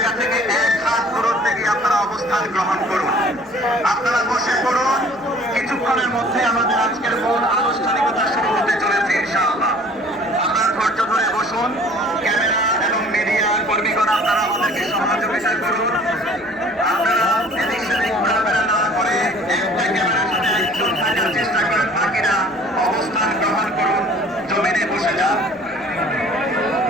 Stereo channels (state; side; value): noise; right; rumble, 29 dB below the sound